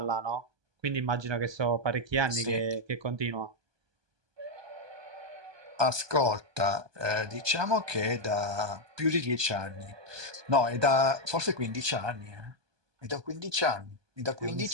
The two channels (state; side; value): late; left; 1.2 ms